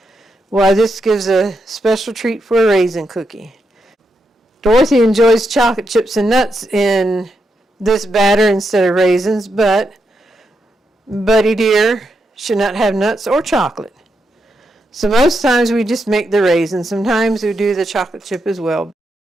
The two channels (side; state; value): both; normal; correlation 0.83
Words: Why, this gives a special treat for a raisin cookie. Dorothy enjoys chocolate chips and nuts in this batter instead of raisins, but Buddy dear should not have nuts or chocolate. So most times we just make the raisins. Sometimes we do the chocolate chip as well.